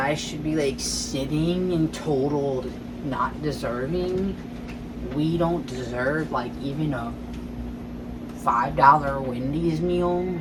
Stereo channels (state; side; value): identical; both; correlation 1.00